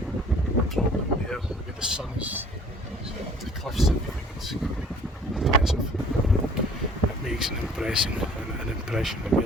from down there, where the sun is, the cliffs and everything, it's quite impressive. It makes an impression that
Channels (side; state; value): both; normal; correlation 0.52